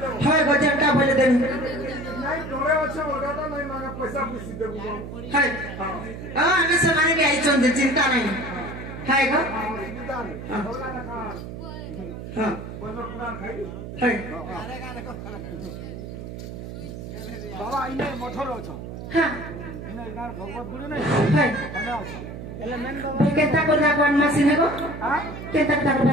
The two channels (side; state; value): right; noise; hum, 9 dB below the sound